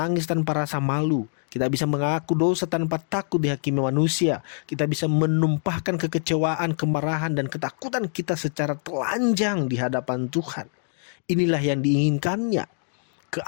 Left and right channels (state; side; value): silent; right; 62 dB below the other